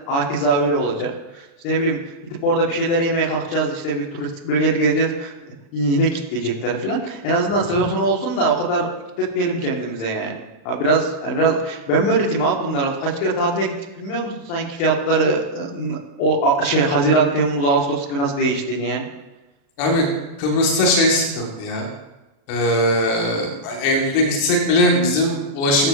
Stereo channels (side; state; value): right; late; 36 ms